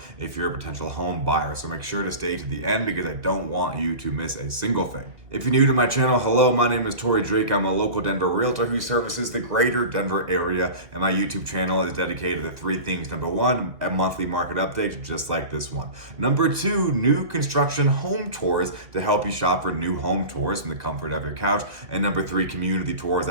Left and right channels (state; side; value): late; left; 2.2 ms